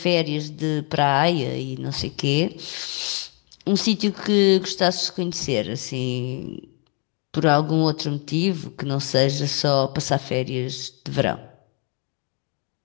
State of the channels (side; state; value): right; quieter; 36.4 dB